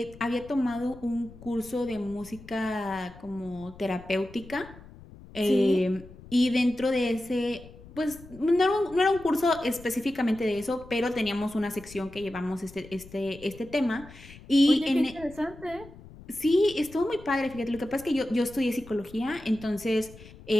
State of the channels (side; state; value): left; noise; rumble, 19 dB below the sound